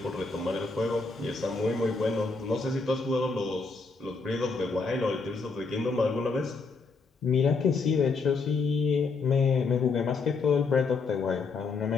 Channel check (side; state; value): right; quieter; 4.3 dB